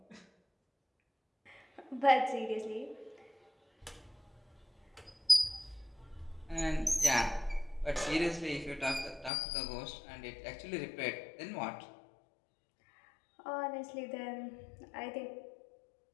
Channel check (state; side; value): drops out; right; at 9.3 s